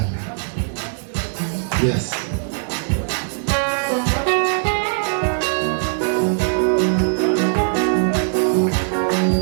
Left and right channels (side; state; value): left; silent; 63 dB below the other